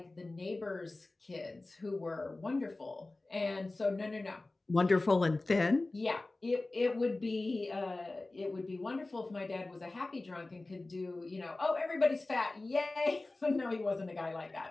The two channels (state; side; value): quieter; right; 3.1 dB